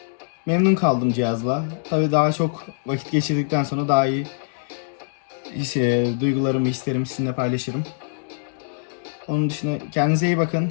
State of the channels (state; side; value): silent; right; 63 dB below the other